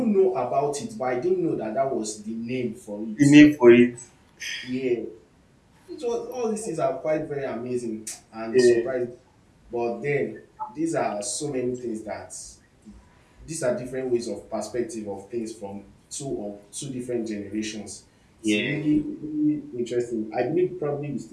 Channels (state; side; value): identical; both; correlation 1.00